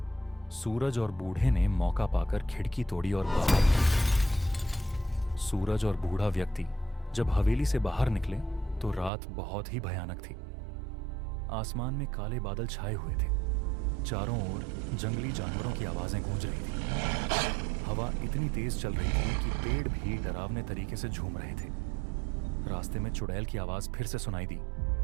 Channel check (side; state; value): left; drops out; at 9.1 s